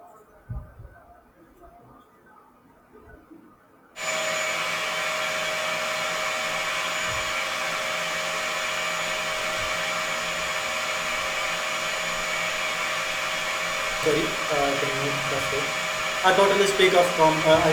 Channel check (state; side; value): identical; both; correlation 1.00